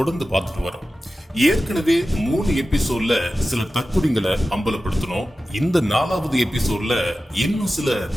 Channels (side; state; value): both; normal; correlation 0.94